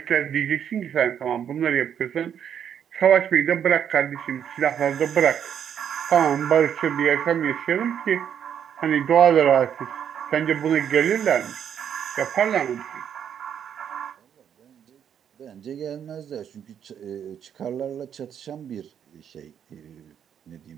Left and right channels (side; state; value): left; quieter; 8.7 dB